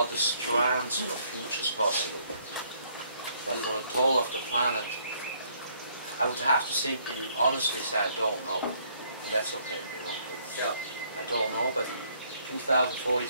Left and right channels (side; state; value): both; inverted; correlation -0.66